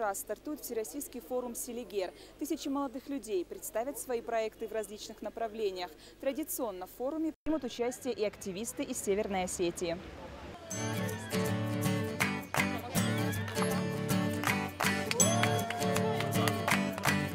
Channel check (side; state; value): both; identical; correlation 1.00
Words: стартует Всероссийский форум «Селигер». Тысячи молодых людей представят свои проекты в различных направлениях. Традиционно в форуме примут участие и активисты из Северной Осетии.